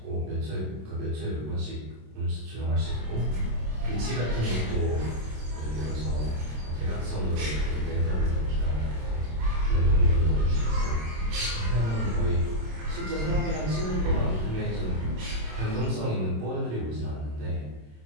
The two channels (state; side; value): late; left; 27 ms